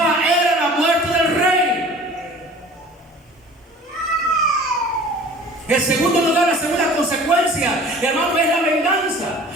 era la muerte del rey. En segundo lugar, la segunda consecuencia, hermano, es la venganza.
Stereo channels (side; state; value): both; normal; correlation 0.45